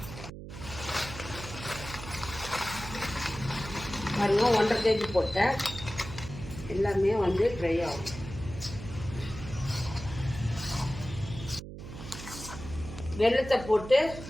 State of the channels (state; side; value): noise; right; hum, 11 dB below the sound